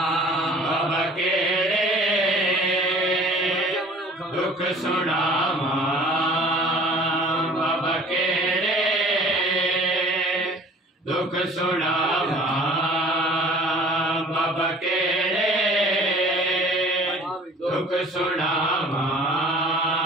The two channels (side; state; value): both; normal; correlation 0.48